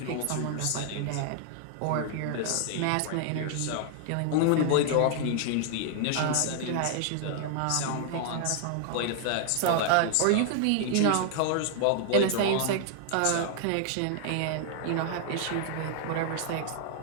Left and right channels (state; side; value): different; both; correlation 0.00